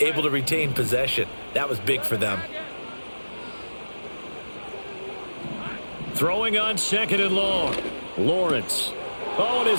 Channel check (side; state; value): both; inverted; correlation -1.00